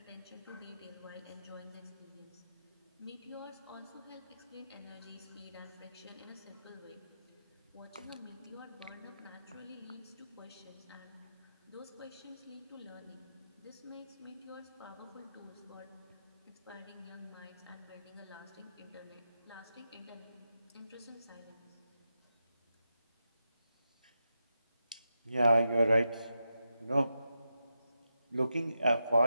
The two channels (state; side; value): inverted; both; correlation -0.88